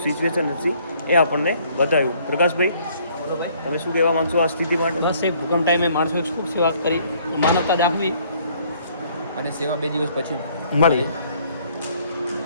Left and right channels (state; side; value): inverted; both; correlation -0.62